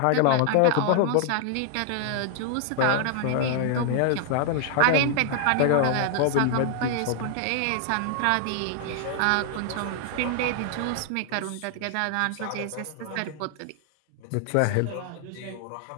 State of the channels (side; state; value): both; different; correlation 0.00